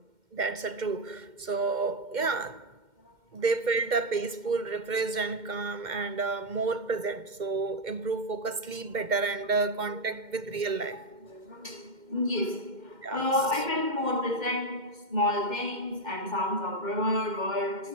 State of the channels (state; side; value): late; left; 2.1 ms